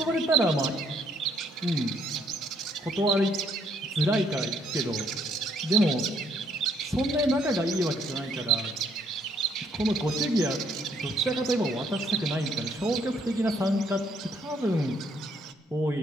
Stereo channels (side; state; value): both; normal; correlation 0.68